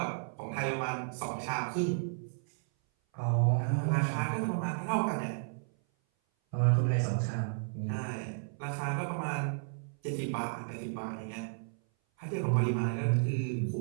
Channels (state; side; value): silent; left; 56 dB below the other